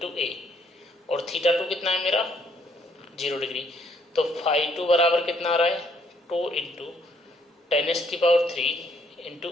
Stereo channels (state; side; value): normal; both; correlation 0.68